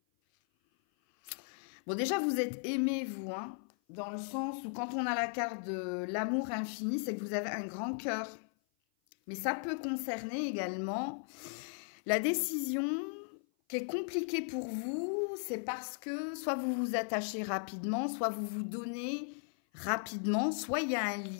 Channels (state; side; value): silent; right; 53 dB below the other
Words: Bon, déjà, vous êtes aimés, vous, hein, dans le sens où quand on a la carte de l'amour infini, c'est que vous avez un grand cœur. Mais ça peut concerner également la décision qui est compliquée pour vous. C'est parce que soit vous vous attachez rapidement, soit vous vous donnez rapidement, soit il y a un